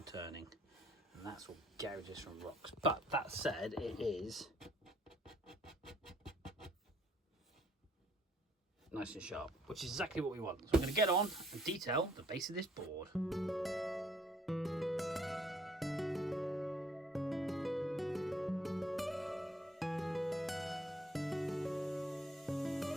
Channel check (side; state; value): both; normal; correlation 0.63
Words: turning, and that's all gouges from rocks. But that said, it is nice and sharp, which is exactly what we want. So I'm going to get on and detail the base of this board.